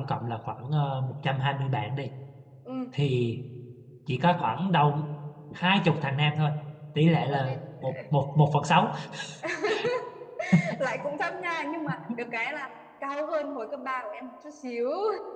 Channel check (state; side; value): identical; both; correlation 1.00